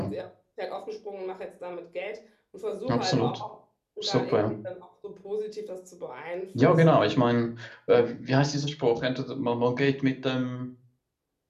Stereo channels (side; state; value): both; identical; correlation 1.00